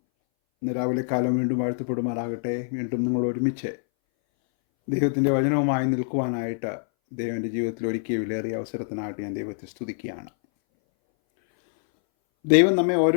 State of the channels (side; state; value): right; silent; 60 dB below the other